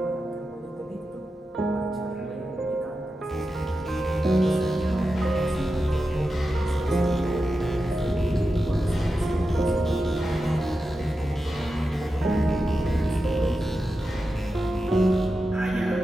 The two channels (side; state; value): both; normal; correlation 0.90